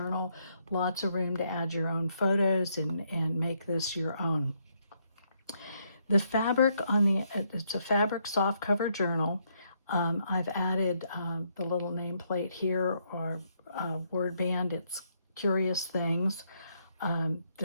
lots of room to add your own photos and make this your own. The fabric it's a fabric soft cover journal. I've added the little nameplate here or word band. It's Curious Things.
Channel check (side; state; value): both; inverted; correlation -0.74